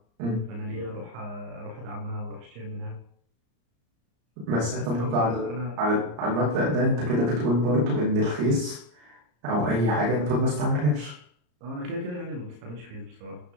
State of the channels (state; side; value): late; left; 34 ms